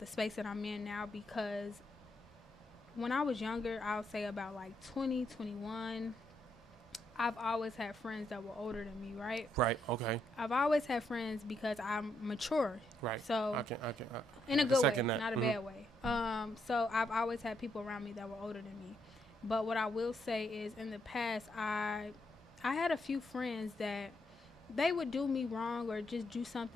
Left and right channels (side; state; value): both; normal; correlation 0.77